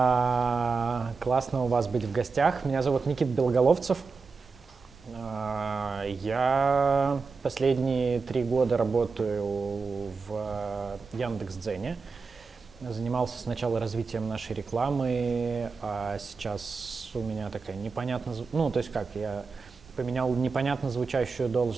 Классно у вас быть в гостях. Меня зовут Никита Белоголовцев. Я последние 3 года работаю в Яндекс.Дзене. Занимался сначала развитием нашей рекламы, а сейчас у меня такая непонятно... я поменял непонятно звучащую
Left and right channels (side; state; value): left; quieter; 4.7 dB